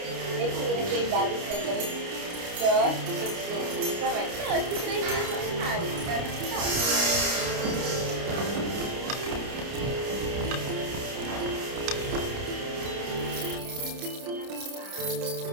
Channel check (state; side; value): late; left; 29 ms